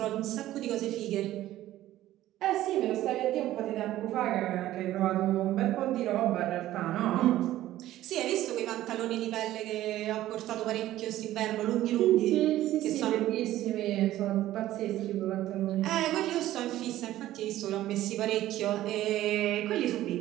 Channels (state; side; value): quieter; left; 14.3 dB